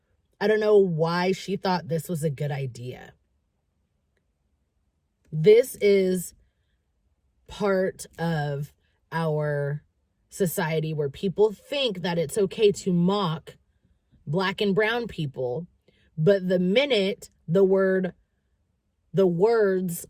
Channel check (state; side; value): identical; both; correlation 1.00